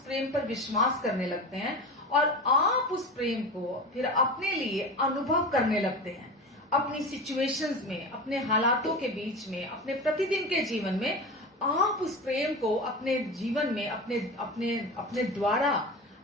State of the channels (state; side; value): normal; both; correlation 0.27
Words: प्रेम पर विश्वास करने लगते हैं और आप उस प्रेम को फिर अपने लिए अनुभव करने लगते हैं। अपनी सिचुएशंस में, अपने हालातों के बीच में, अपने प्रतिदिन के जीवन में आप उस प्रेम को अपने जीवन में अपने द्वारा,